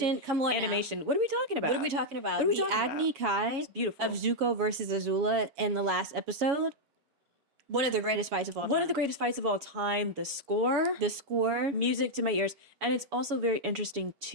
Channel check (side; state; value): left; late; 7.1 ms